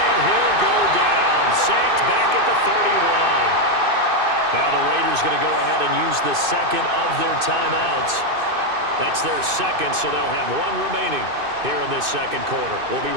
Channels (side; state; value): left; late; 2.6 ms